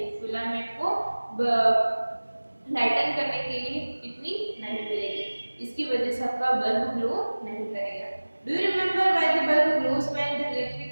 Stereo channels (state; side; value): inverted; both; correlation -1.00